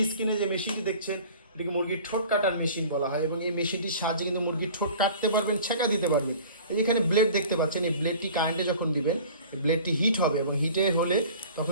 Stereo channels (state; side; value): inverted; both; correlation -0.45